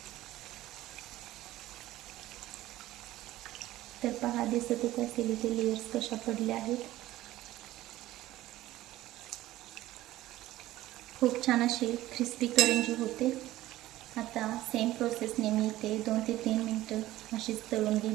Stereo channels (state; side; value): quieter; left; 15.6 dB